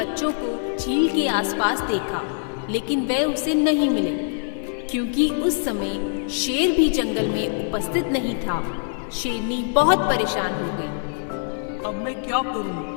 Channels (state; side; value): silent; right; digital silence